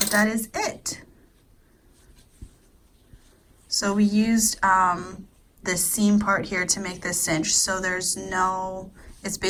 that is it. So we used this seam part here to make this cinch, so there's no, it's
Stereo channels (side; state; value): both; identical; correlation 1.00